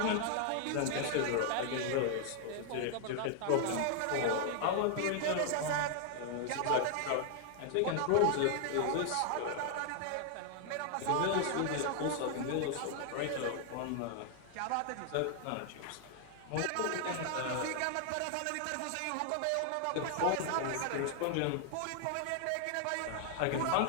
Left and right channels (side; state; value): both; different; correlation 0.00